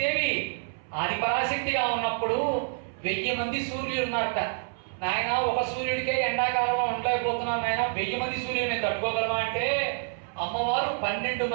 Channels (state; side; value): silent; left; 60 dB below the other